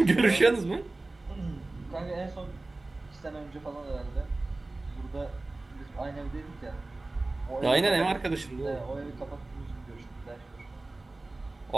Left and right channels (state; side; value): quieter; left; 3.0 dB